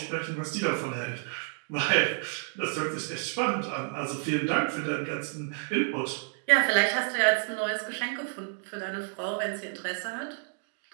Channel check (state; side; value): silent; left; 58 dB below the other